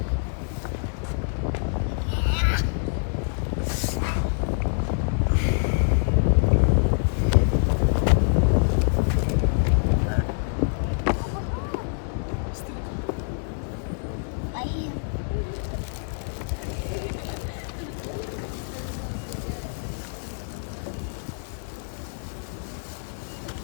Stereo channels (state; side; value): silent; right; 61 dB below the other